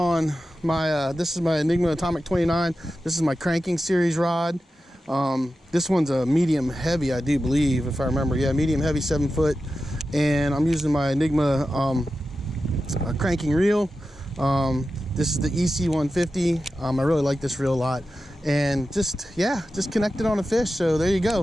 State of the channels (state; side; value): normal; both; correlation 0.92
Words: my, this is my Enigma Atomic 29. This is my cranking series rod. This one's a medium heavy, I do believe, if I remember. Yeah, medium heavy, 7 foot. And I'm using my Enigma cranking reel. This is the EC150. I really like this reel a lot. And just connected on a fish. So there you